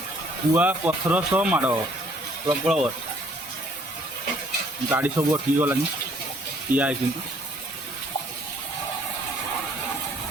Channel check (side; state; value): both; normal; correlation 0.62